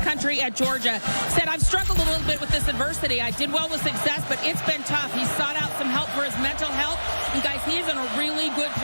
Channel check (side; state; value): both; inverted; correlation -1.00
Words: country at Georgia. Said, I've struggled a little bit with this adversity. I did well with success, but it's been tough. He sought out some help for his mental health, and guys, he is in a really good